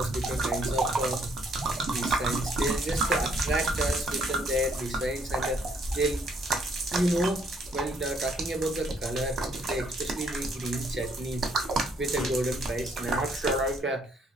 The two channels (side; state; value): both; normal; correlation 0.68